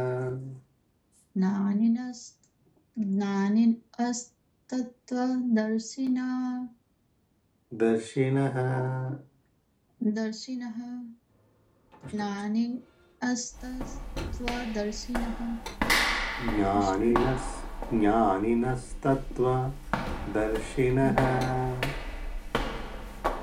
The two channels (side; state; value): both; identical; correlation 1.00